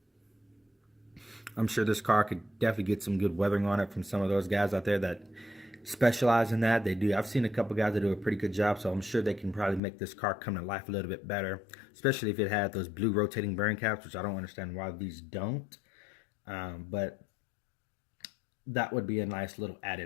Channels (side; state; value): right; drops out; at 9.8 s